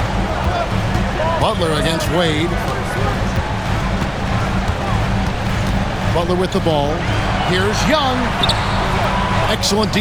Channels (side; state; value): both; identical; correlation 1.00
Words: Butler against Wade. Butler with the ball. Here's Young. Excellent